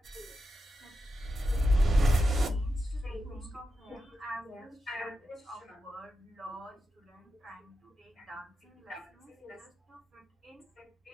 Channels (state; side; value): normal; both; correlation 0.88